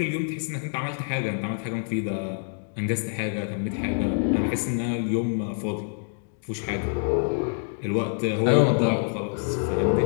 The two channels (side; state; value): right; silent; digital silence